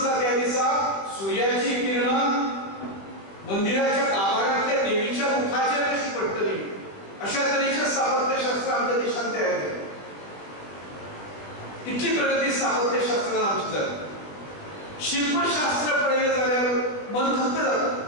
त्या दिसा सूर्याची किरणां मंदिराच्या गाभाऱ्यांतल्या देवीच्या मुखाचेर कशी पडटली अशा तरेचें स्थापत्यशास्त्र आमच्या देशांत तयार केलें. स्थापत्यशास्त्रान आमचे जालें. शिल्पशास्त्र पळयलें जाल्यार मन थक्क जाता.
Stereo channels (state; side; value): late; right; 21 ms